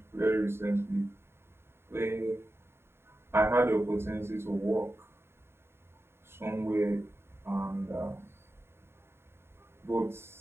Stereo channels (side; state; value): left; late; 0.12 ms